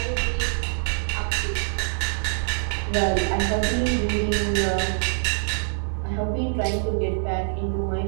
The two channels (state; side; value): silent; left; digital silence